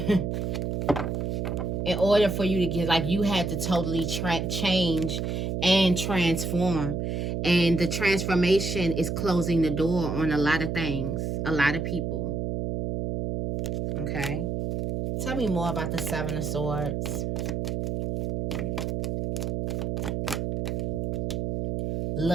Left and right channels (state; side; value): noise; right; hum, 1 dB below the sound